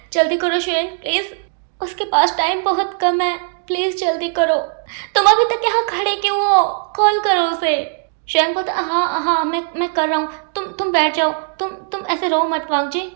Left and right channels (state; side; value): silent; left; digital silence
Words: जल्दी करो शुएंग प्लीज़, उसके पास टाइम बहुत कम है, प्लीज़ जल्दी करो। तुम अभी तक यहाँ खड़े क्यों हो? कॉल करो उसे। शुएंग बोलता हाँ मैं कर रहा हूँ, तुम बैठ जाओ, तुम ऐसे रो मत वांगजी।